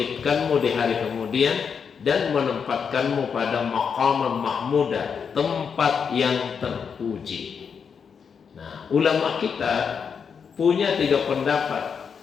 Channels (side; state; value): right; quieter; 6.5 dB